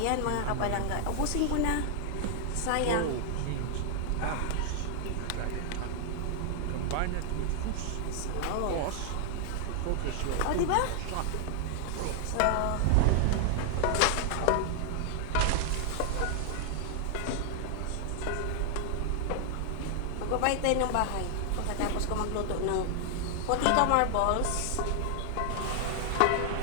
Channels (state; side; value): different; both; correlation 0.00